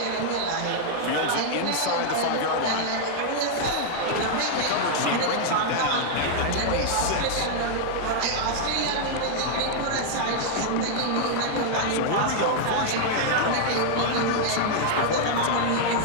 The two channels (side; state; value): both; different; correlation -0.01